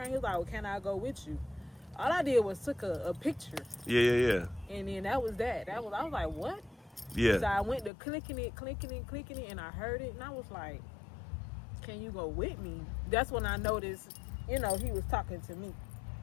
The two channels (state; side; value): drops out; right; at 7.9 s